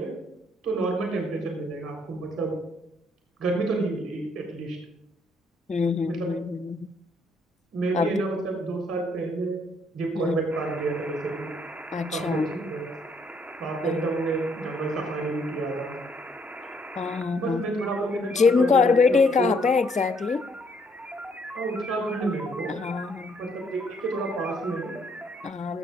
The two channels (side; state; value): both; normal; correlation 0.69